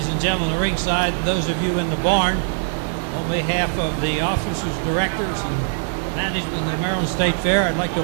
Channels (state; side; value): silent; left; digital silence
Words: and gentlemen, the ringside, those of you in the barn, on behalf of the officers, directors, and management of the Maryland State Fair, I'd like to